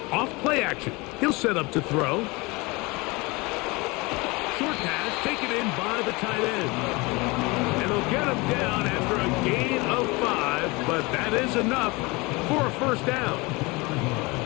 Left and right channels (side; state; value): right; quieter; 25.1 dB